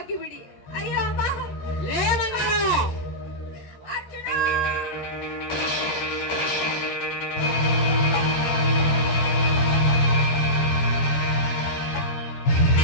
ಅಯ್ಯೋ ಅಮ್ಮ, ಅರ್ಜುನ.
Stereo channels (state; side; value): late; right; 13 ms